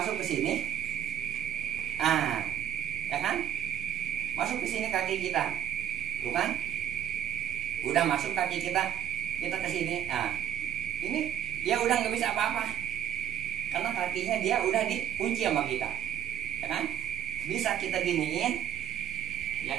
ke sini, ya kan? Masuk ke sini kaki kita, tuh kan? Udah masuk kaki kita ke sini. Nah, ini dia udah nggak bisa apa-apa, karena kakinya dia udah dikunci sama kita, ya kan? Bisa kita giniin,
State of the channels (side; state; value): left; quieter; 10.2 dB